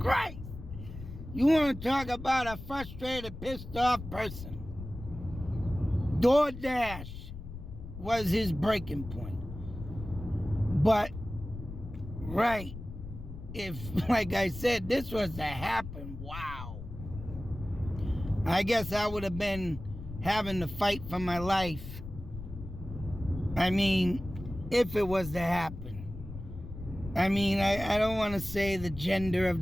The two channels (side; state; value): left; noise; rumble, 11 dB below the sound